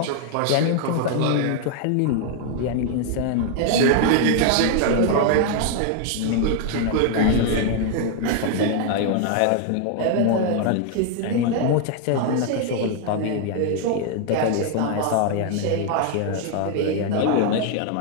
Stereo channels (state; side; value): different; both; correlation 0.00